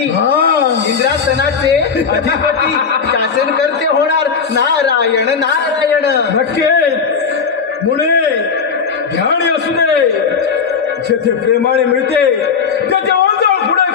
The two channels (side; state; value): right; quieter; 5.9 dB